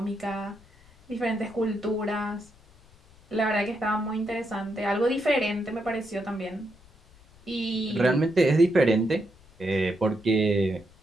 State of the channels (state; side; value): noise; left; rumble, 26 dB below the sound